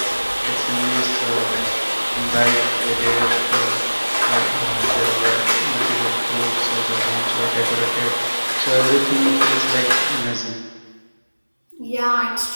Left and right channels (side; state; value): both; inverted; correlation -1.00